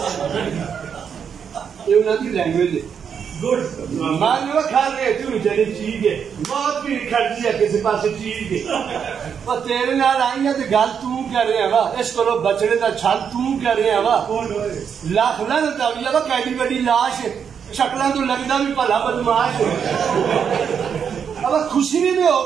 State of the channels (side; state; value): left; quieter; 7.3 dB